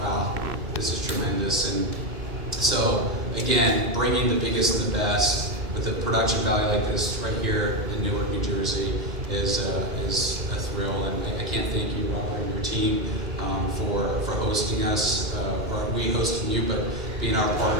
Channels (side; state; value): left; late; 2.1 ms